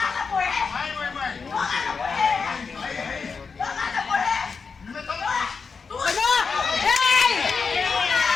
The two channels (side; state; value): right; quieter; 5.2 dB